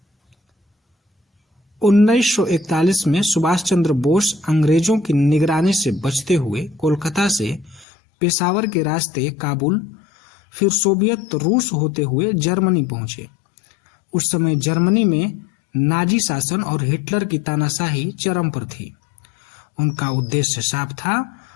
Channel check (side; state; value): right; drops out; at 7.9 s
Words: 1941 में सुभाष चंद्र बोस अंग्रेजों की निगरानी से बचते हुए कोलकाता से पेशावर के रास्ते काबुल, फिर सोवियत रूस होते हुए जर्मनी पहुंचे। उस समय जर्मनी में नाजी शासन और हिटलर की तानाशाही चरम पर थी। उनका उद्देश्य साफ था,